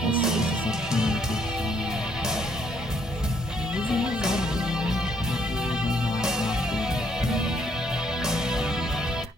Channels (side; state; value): both; normal; correlation 0.69